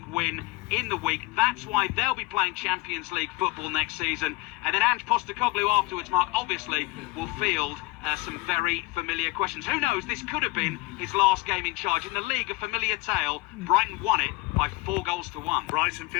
win in the week. That's why they'll be playing Champions League football next season. And then Ange Postecoglou afterwards, Mark, obviously will field some very familiar questions. Who knows, this could have been his last game in charge. In the league, a familiar tale. Brighton won it by 4 goals to 1. Brighton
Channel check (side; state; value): right; quieter; 21.5 dB